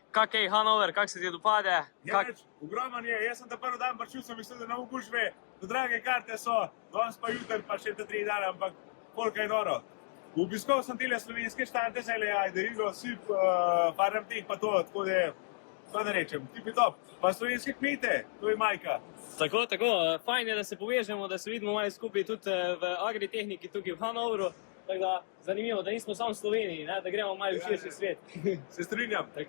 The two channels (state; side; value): silent; right; digital silence